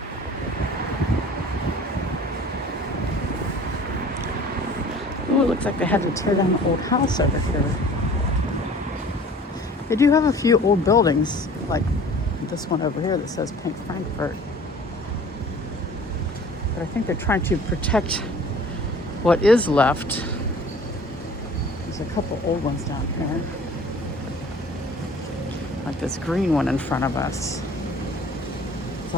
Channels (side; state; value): both; normal; correlation 0.48